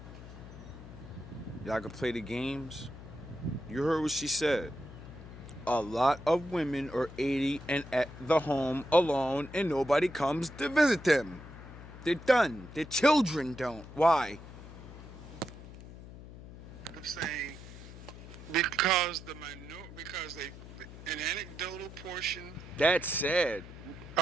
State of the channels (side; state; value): left; noise; hum, 15 dB below the sound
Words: Y'all can play the games. You heard what she said. A lot of women are 80 and at the home alone and nobody comes to visit them. They're done. Their children don't. Why? I'm saying because an anecdotal portion That's sad.